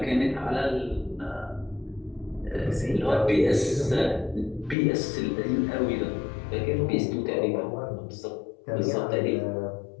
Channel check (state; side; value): drops out; right; at 4.8 s